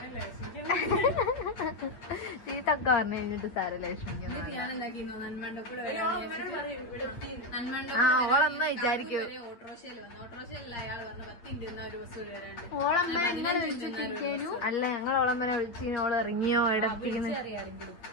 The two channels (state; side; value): late; right; 8.7 ms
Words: ചീത്തൊക്കെ പറഞ്ഞു കഴിഞ്ഞിട്ട് സാരല്ല ലക്ഷ്മിക്ക്. ആ ഓളമ്മ വിചാരിക്കൂ. അല്ല ഞങ്ങൾ ഓളമ്മനെ വിളിച്ച് ഓള് ഇറങ്ങിയോ എവിടെത്തിക്കുന്നു.